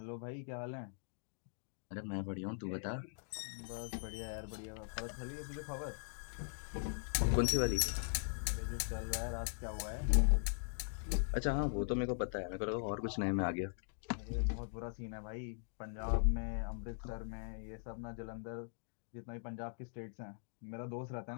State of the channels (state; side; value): silent; right; digital silence